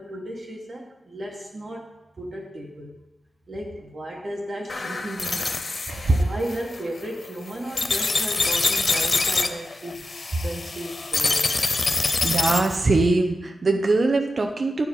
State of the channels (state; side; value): normal; both; correlation 0.90